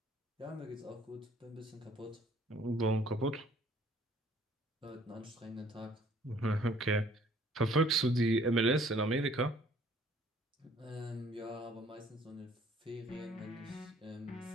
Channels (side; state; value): both; normal; correlation 0.58